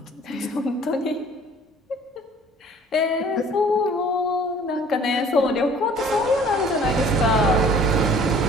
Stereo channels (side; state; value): both; normal; correlation 0.51